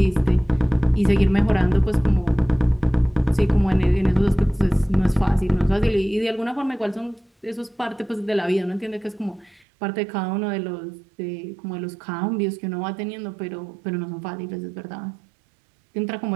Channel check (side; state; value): left; drops out; at 9.7 s